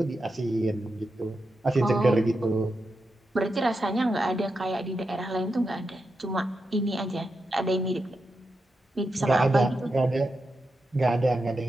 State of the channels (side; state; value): both; normal; correlation 0.87